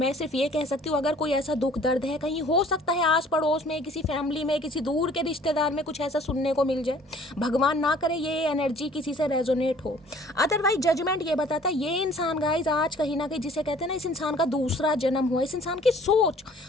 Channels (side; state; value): both; normal; correlation 0.53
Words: सिर्फ ये कह सकती हूँ अगर कोई ऐसा दुख दर्द है, कहीं हो सकता है आस पड़ोस में, किसी फैमिली में, किसी दूर के रिश्तेदार में कुछ ऐसा सुनने को मिल जाए, भगवान ना करे ये एनर्जी किसी से रेजोनेट हो। अदरवाइज जजमेंट ये बताता है ये इंसान गाइज आज कहीं ना कहीं जिसे कहते हैं ना, इस इंसान का दूसरा जन्म हुआ, इस इंसान की सोच,